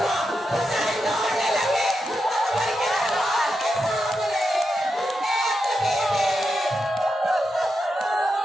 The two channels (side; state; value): both; normal; correlation 0.87